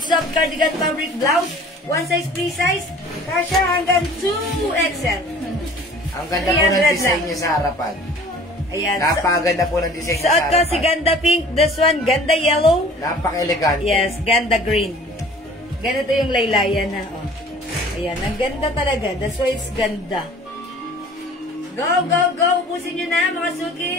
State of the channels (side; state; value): both; normal; correlation 0.48